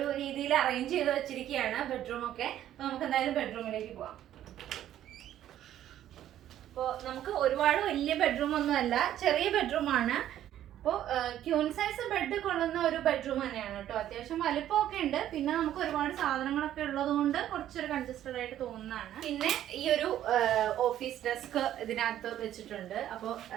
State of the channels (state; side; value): quieter; left; 11.9 dB